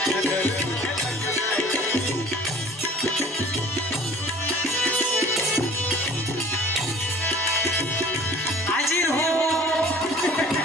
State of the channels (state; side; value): normal; both; correlation 0.48